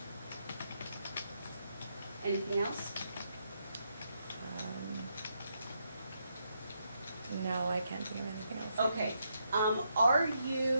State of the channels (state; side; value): inverted; both; correlation -0.79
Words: Anything else? No, I can't think of anything else. Okay, are